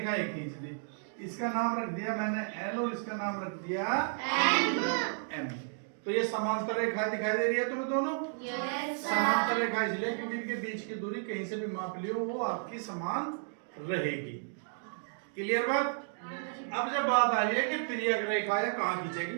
ये खींच दी। इसका नाम रख दिया मैंने एल और इसका नाम रख दिया एम। तो ये समांतर रेखा दिखाई दे रही है तुम्हें दोनों? समांतर रेखा इसलिए क्योंकि इनके बीच की दूरी कहीं से भी माप लियो वो आपकी समान रहेगी। क्लियर बात? अब जब बात आ रही है कि तिर्यक रेखा या कहाँ खींचेगी,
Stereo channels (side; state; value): left; silent; digital silence